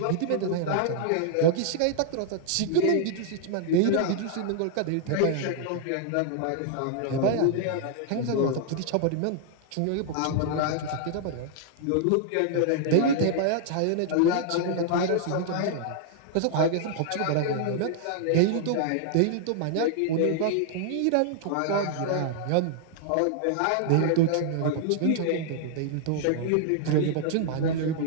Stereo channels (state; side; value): different; both; correlation -0.01